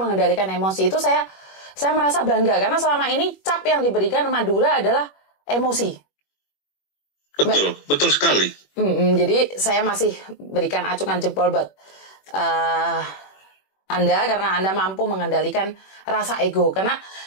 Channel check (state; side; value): late; right; 21 ms